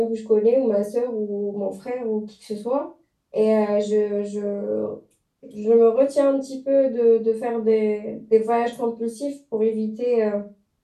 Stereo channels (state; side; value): identical; both; correlation 1.00